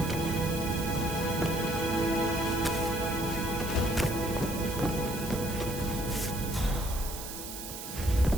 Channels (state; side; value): noise; right; hiss, 9 dB below the sound